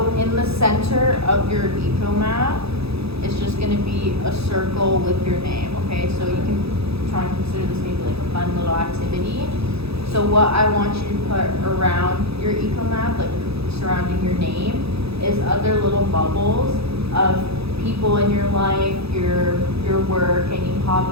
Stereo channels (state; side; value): late; left; 0.78 ms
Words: in the center of your eco map is just gonna be a circle with your name, okay? So you can try and consider this maybe like a fun little activity. So what I want you to put around your eco map, like surrounding your name, is other little bubbles of people in your life, your work, any